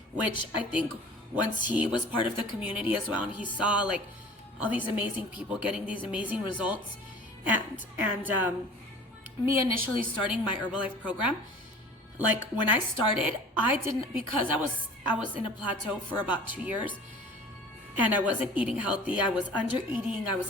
which I think once he was part of the community as well, and he saw like all these amazing people getting these amazing results, and me initially starting my Herbalife program, like when I started, I didn't, because I was in a plateau for about 2 years, and I wasn't eating healthy. I was under eating. I was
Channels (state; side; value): normal; both; correlation 0.44